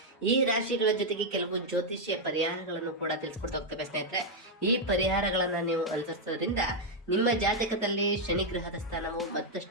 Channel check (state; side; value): normal; both; correlation -0.01